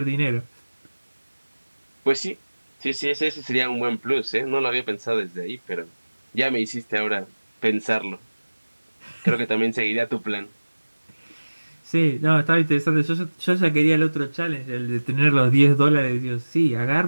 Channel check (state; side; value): inverted; both; correlation -1.00